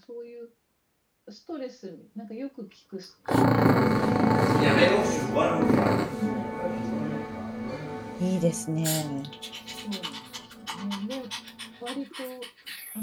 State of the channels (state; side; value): identical; both; correlation 1.00